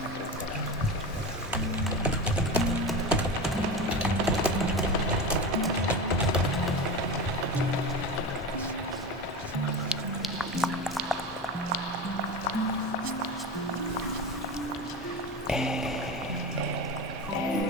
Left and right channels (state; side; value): normal; both; correlation 0.25